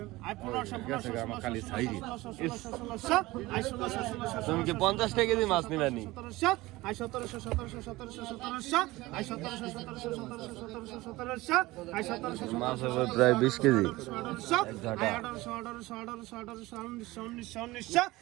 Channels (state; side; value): quieter; left; 19.6 dB